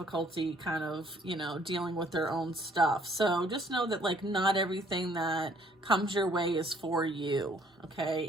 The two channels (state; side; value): normal; both; correlation 0.61